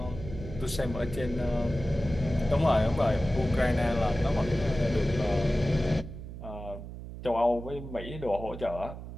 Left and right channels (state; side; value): noise; right; hum, 11 dB below the sound